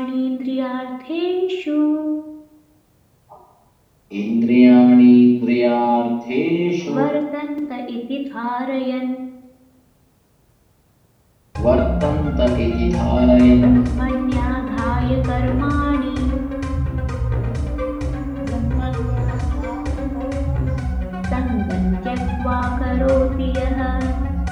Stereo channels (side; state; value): both; identical; correlation 1.00